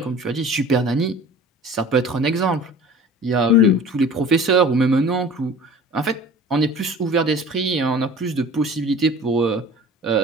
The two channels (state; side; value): normal; both; correlation 0.43